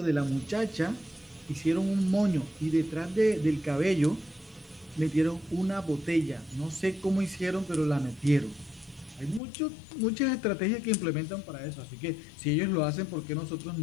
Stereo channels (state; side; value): drops out; right; at 9.4 s